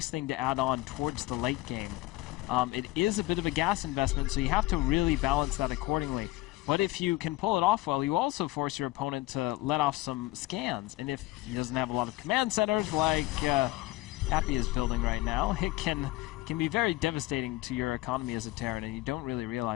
thing to add on towards the late game. It is a bit of a gas investment, so you have to really balance that accordingly. But if you can pull it off well, you also force your opponent to let off some scans. And if he doesn't have a lot of command centers like Happy is building right now, it can be very devastating to your economy as a Terran, and you don't really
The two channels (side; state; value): right; quieter; 18.9 dB